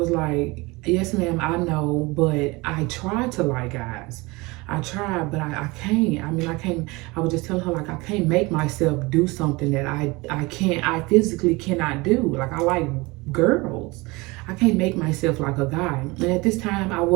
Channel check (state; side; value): quieter; left; 23.9 dB